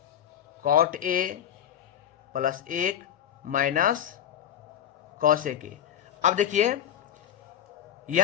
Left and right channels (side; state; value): right; quieter; 10.2 dB